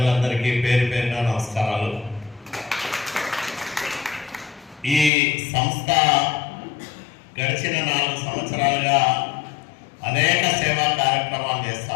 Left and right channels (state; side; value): drops out; right; at 5.1 s